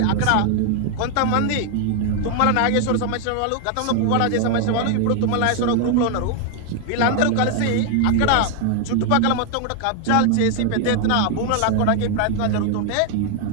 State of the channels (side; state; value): both; different; correlation 0.00